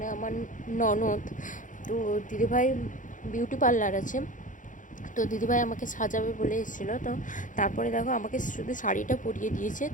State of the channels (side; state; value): right; late; 0.37 ms